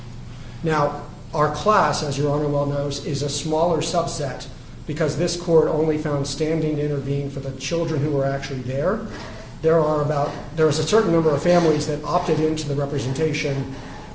Now, our class, as Your Honor well knows, is a smaller subset because this court only found standing to intervene for the children who were actually there. There was a certain number of families that opted into the representation,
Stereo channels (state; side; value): identical; both; correlation 1.00